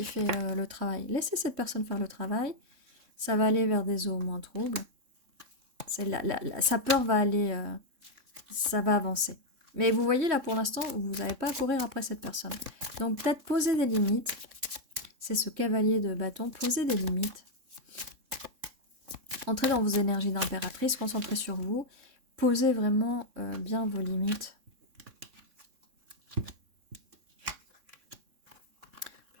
fait le travail. Laissez cette personne faire le travail. Ça va aller vers des eaux moins troubles. Sa peur va aller... ça va avancer. Mais vous voyez, là, pour l'instant, vous n'avez pas à courir après cette personne. Donc, peut-être poser des limites. C'est ce cavalier de bâton. Poser des limites. Entrez dans vos énergies d'impératrice. Concentrez sur vous. Posez vraiment bien vos limites.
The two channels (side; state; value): left; late; 3.6 ms